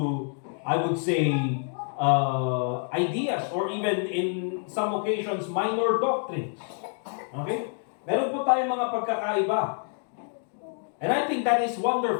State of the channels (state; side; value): silent; right; 56 dB below the other